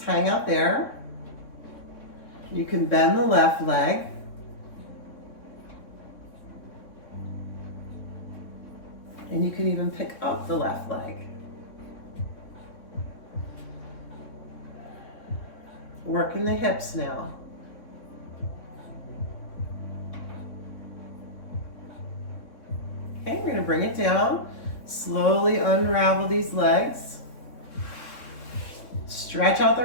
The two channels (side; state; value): right; late; 3.6 ms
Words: hang out there. You can bend the left leg. And you can even pick up the left leg. Working the hips now. Okay, we're going to bring it down. Slowly unravel these legs. Stretch out the